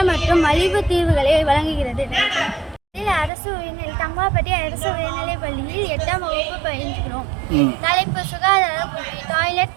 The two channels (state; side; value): drops out; left; at 3.3 s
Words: மற்றும் மலிவு தீர்வுகளை வழங்குகிறது. அரசு உயர்நிலை தங்கமாப்பட்டி அரசு உயர்நிலைப் பள்ளியில் 8ஆம் வகுப்பு பயின்றோம். தலைப்பு சுகாதார புள்ளி